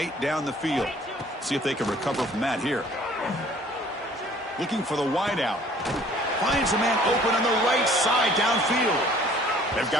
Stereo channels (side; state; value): both; normal; correlation 0.54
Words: down the field. See if they can recover from that here. Looking for the wideout. Finds a man open on the right side downfield. They've